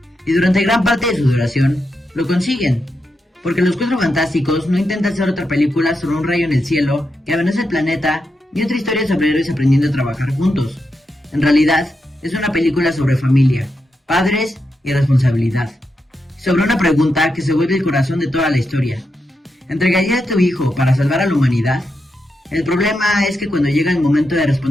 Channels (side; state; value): both; normal; correlation 0.86